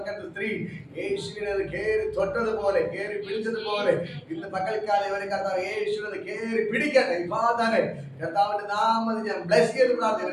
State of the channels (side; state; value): both; identical; correlation 1.00